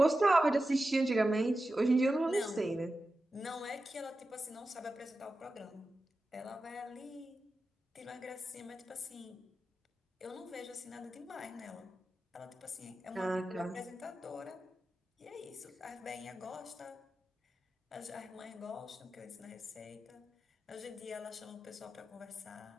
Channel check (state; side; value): normal; both; correlation 0.92